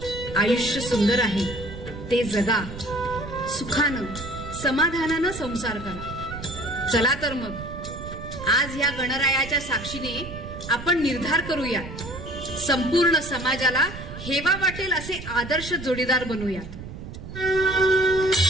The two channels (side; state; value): right; noise; rumble, 11 dB below the sound